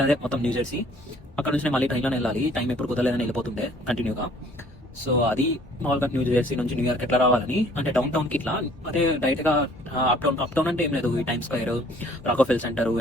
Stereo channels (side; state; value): both; normal; correlation 0.57